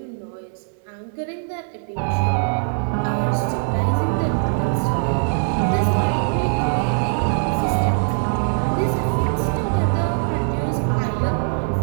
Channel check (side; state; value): left; silent; 65 dB below the other